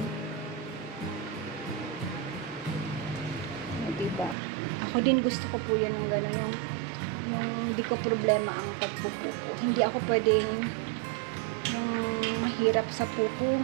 Diba? ba? Ako din gusto ko po yan ng gano'n, yung hindi ko problema ang pagpupupo. Hindi ako pwedeng yung mahirap sa pupo.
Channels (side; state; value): left; drops out; at 4.4 s